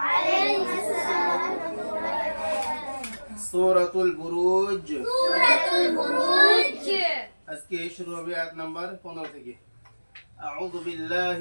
السلام ورحمة الله وبركاته. سورة البروج. سورة البروج. আজকে শুরু হবে আয়াত নাম্বার 15 থেকে। أعوذ بالله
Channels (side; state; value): both; inverted; correlation -1.00